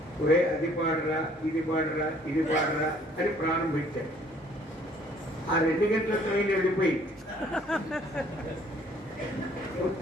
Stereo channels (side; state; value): both; normal; correlation 0.59